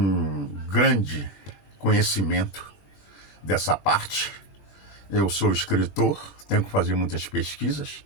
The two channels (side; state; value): right; late; 20 ms